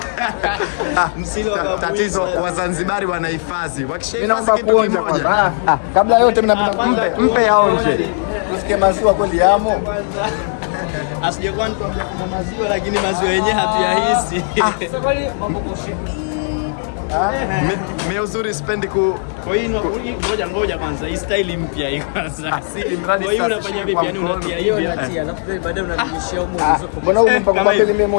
Msile wa Babu Isa. Tatizo Wazanzibari wanahifadhi. Wakishahifadhi kitu kimoja, kabla yote mimi napenda mpe yaonje. Usikie maziwa kweli yamo. Asijekuwa nikwambia kuna maziwa, lakini maziwa yenyewe hatuyahisi. Mimi uzuri sipendi kwa hiyo ngoja kwanza, hii style mpya hii kwanza. Asili mradi sasa. Kwa hiyo unafanya vipi? Yani unatia hivi baadaye unarudishia huko. Kama hivi mimi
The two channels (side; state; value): right; silent; digital silence